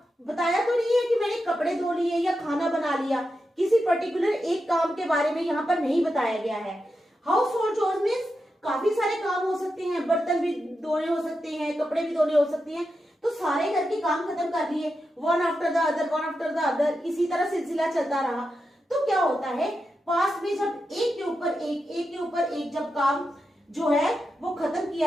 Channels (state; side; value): normal; both; correlation 0.88